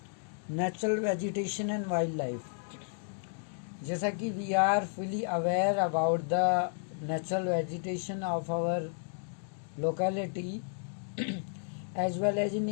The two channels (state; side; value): silent; right; digital silence